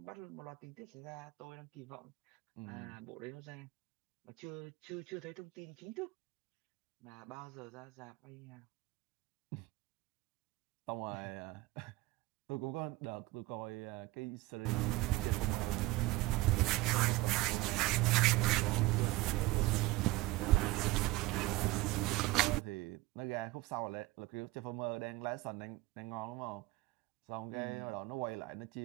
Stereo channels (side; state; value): left; quieter; 19.1 dB